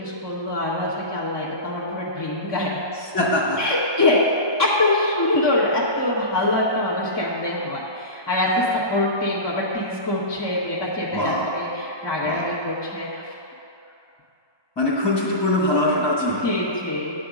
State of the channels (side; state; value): right; late; 1.2 ms